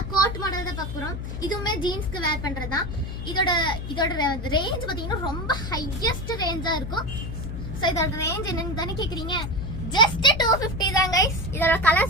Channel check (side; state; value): left; noise; hum, 6 dB below the sound